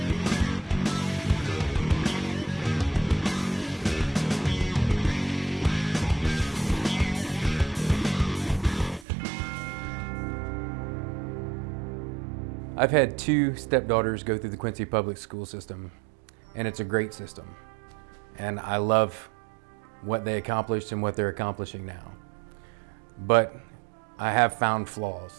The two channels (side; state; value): left; drops out; at 9.1 s